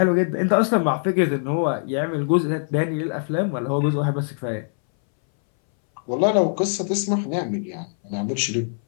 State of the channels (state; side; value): silent; right; 61 dB below the other